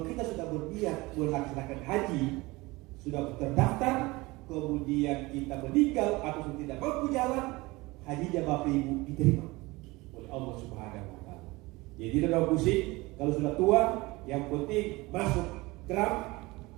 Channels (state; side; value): quieter; left; 22.1 dB